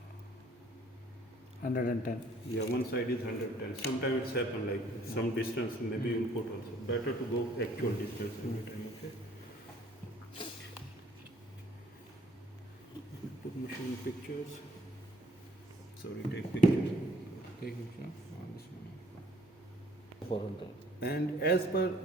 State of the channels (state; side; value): normal; both; correlation 0.60